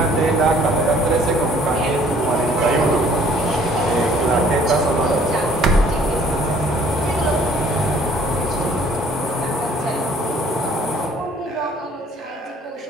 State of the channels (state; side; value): normal; both; correlation 0.57